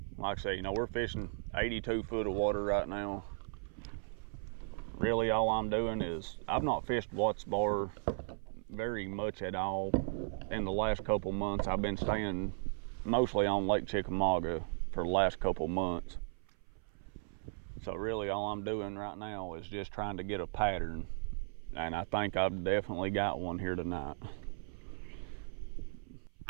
Like I say, you know, we're fishing 82 foot of water right now. Really all I'm doing is, I've not fished Watts Bar very much at all in the last couple months. I've been staying mostly on Lake Chickamauga for the last couple months. So really all I'm doing right now is just trying to get a pattern, and I think I've definitely got one here tonight.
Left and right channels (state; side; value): silent; left; 54 dB below the other